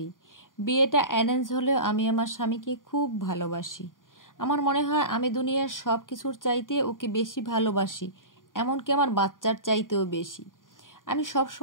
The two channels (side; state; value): right; late; 0.89 ms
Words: বিয়েটা অ্যারেঞ্জ হলেও আমি আমার স্বামীকে খুব ভালোবাসি। আমার মনে হয় আমি দুনিয়ার সব কিছুর চাইতে ওকে বেশি ভালোবাসি, এমনকি আমার বাচ্চার চাইতেও বেশি। আমি সব